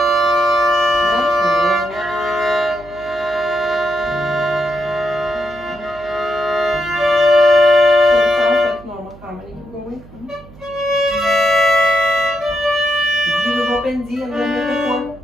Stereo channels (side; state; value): right; noise; hum, 22 dB below the sound